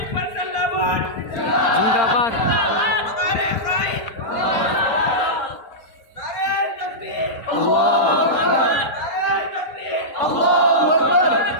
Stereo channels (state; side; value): late; right; 4.3 ms